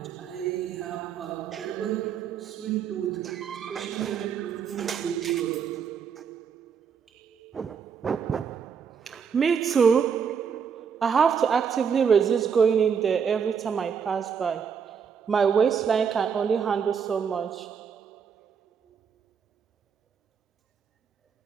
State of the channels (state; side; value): quieter; left; 6.8 dB